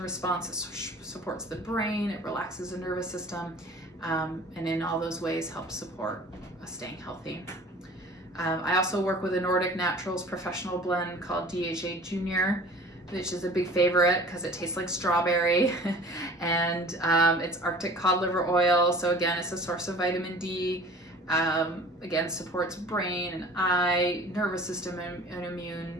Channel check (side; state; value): both; normal; correlation 0.45